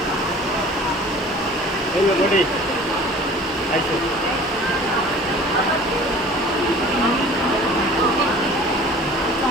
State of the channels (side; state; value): both; normal; correlation 0.46